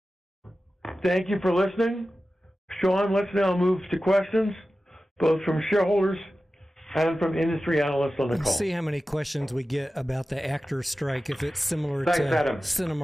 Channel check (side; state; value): both; normal; correlation 0.94